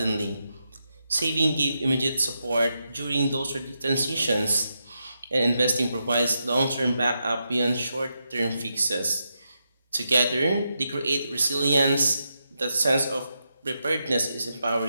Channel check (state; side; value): inverted; both; correlation -0.85